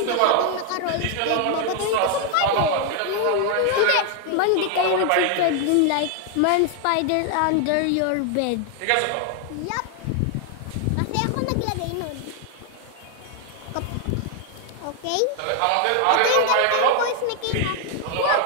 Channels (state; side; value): different; both; correlation 0.00